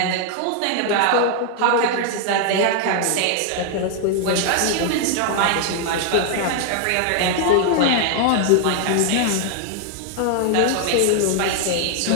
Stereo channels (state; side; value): different; both; correlation 0.00